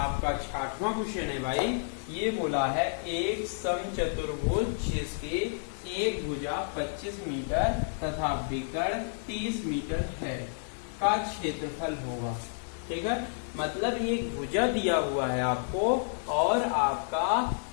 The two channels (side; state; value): right; silent; digital silence